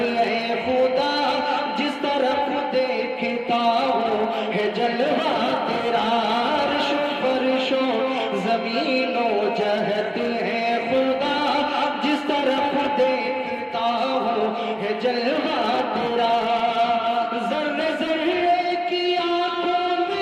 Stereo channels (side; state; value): both; identical; correlation 1.00